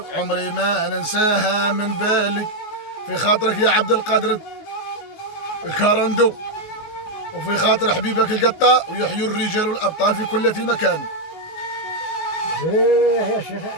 عمري ما ننساها من بالي. في خاطرك يا عبد القادر الكارندو وفي خاطر حبيبك القطة ويحيوا الرجال والأبطال في كل مكان. ايه يا شيخ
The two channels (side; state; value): right; late; 19 ms